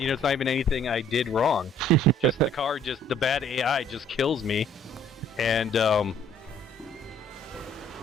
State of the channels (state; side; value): normal; both; correlation 0.59